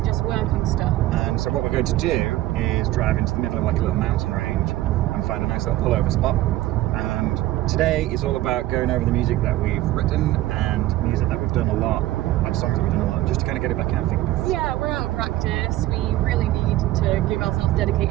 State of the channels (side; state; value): left; quieter; 15.9 dB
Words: just work on stuff. And so what we're going to do is drive into the middle of like a little mountain range and find a nice little pullover spot. And today is all about going over the music that we've written and music that we've done a lot, like songs that we've done a lot, just to kind of get it back in, I think. Yeah, we're out of practice. We really need to give ourselves